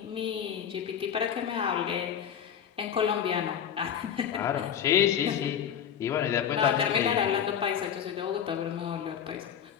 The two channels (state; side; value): quieter; right; 8.7 dB